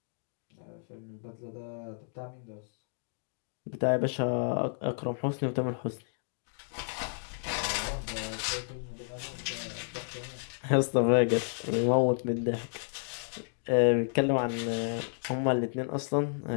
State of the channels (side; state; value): right; silent; digital silence